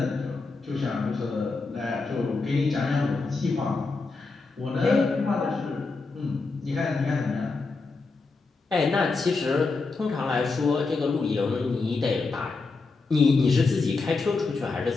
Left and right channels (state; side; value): quieter; right; 4.0 dB